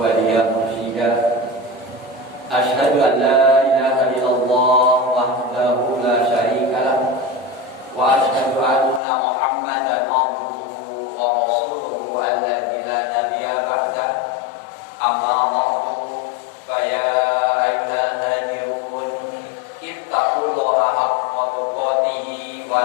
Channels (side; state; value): right; drops out; at 9.0 s